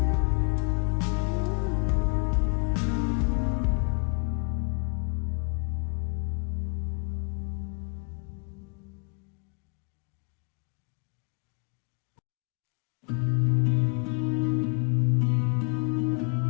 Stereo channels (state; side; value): quieter; right; 37.9 dB